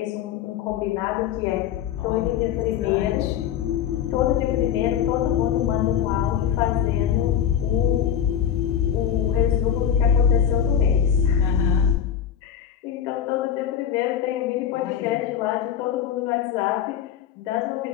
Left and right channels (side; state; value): right; quieter; 9.1 dB